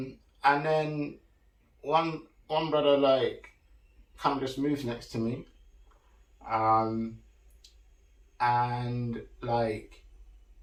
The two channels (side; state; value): both; identical; correlation 1.00